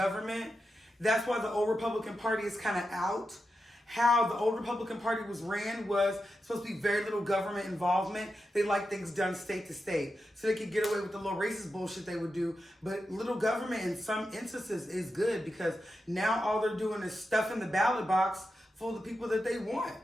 That's why the old Republican Party is kind of out. How the old Republican Party was ran was supposed to be very little government involvement. They like things done state to state. So they could get away with the little racist bullshit they would do. But little government in some instances is good because now all they're doing is stuffing the ballot box full of the people that they want.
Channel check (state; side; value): normal; both; correlation 0.89